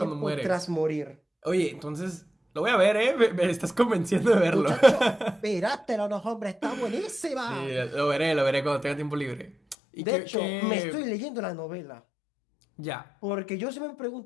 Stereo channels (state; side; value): drops out; right; at 9.8 s